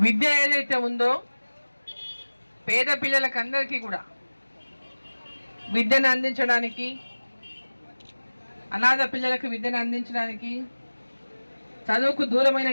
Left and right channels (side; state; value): both; inverted; correlation -1.00